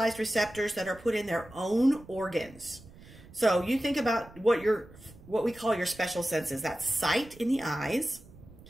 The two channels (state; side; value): noise; right; rumble, 21 dB below the sound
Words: receptors that are put in their own organs. So you think about what we call your special senses. That's sight in the eyes,